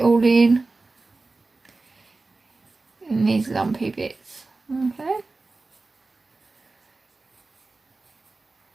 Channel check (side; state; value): left; quieter; 3.5 dB